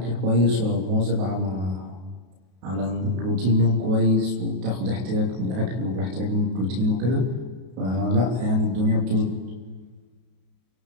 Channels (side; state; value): left; late; 32 ms